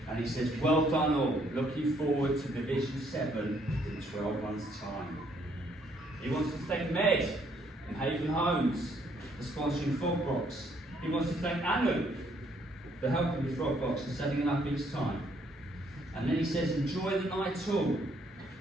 And he says, well done all, looking forward to Division 7 in 12 months' time. He wants to thank Med and Haven Homes for sponsoring Frogbox. He wants to thank Anu for helping with Frogbox and setting it up each time. And then he says, enjoy the night all.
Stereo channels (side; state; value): both; normal; correlation 0.68